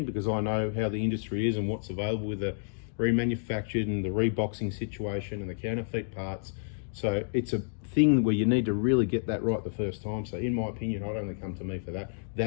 because I know how the industry is and what's available with the remanufactured and the reboxing situation and the counterfeit parts. So it's a thing where you need to really get that right the first time. So in my opinion, I'd only come to me for that.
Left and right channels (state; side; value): silent; right; digital silence